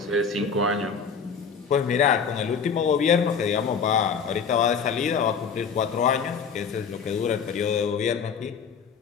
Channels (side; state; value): right; quieter; 6.1 dB